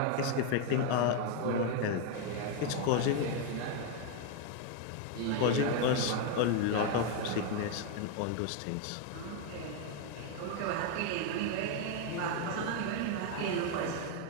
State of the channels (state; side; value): different; both; correlation 0.01